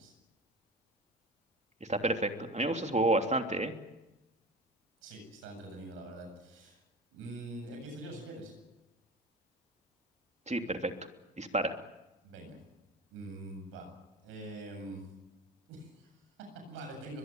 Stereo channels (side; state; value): both; normal; correlation 0.33